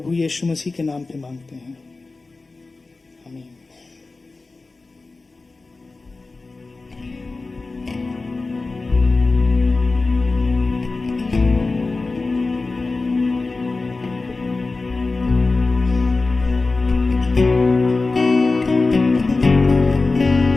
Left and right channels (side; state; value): right; quieter; 3.6 dB